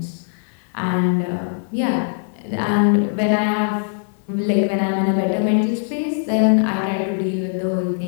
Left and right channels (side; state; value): right; silent; digital silence